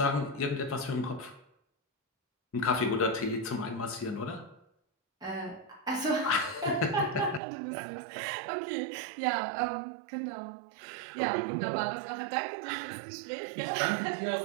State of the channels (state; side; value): drops out; left; at 7.4 s